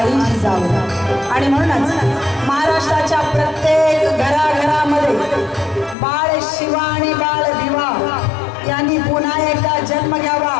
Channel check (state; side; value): drops out; right; at 6.0 s